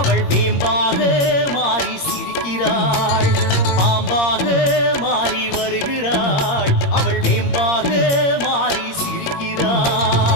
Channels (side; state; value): right; late; 21 ms